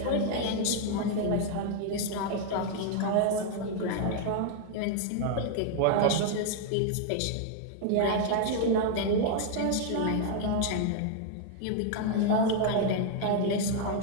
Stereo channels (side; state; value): both; different; correlation 0.00